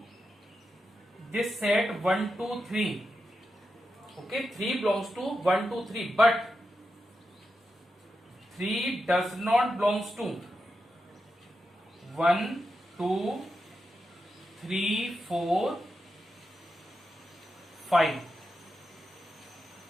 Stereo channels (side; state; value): both; normal; correlation 0.88